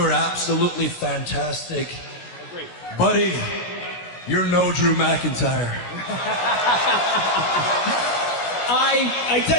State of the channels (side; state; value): right; late; 16 ms